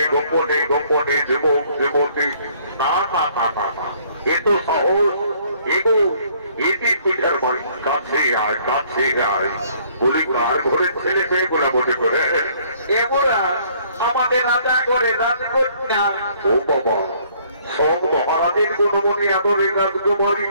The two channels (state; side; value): inverted; both; correlation -0.62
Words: গোপনে গোপনে যুবক যুবতী না না না না না এ তো সহজ এগো এটি পিঠার বাড়ি কাছে আয় বলি কার ঘরের ছেলে পেয়ে গোলা বটে করে এমরা আমাদের রাজা করে রাজকন্যা। ও বাবা সব মহারাজের গুণমণি আদরে রাজকুমারী